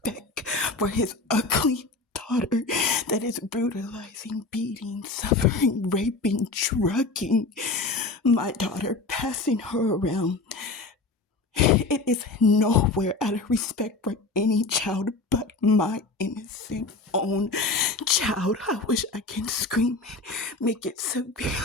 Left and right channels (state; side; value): quieter; right; 3.6 dB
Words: for his ugly daughter that is brutalizing, beating, suffering, raping, drugging my daughter, passing her around. It is nowhere out of respect for any child but my innocent own child. I wish I can scream it, make it